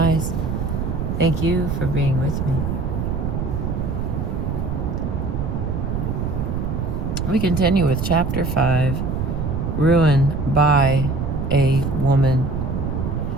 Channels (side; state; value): right; noise; rumble, 1 dB below the sound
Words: Thank you for being with me. We continue with Chapter 5, Ruin by a Woman,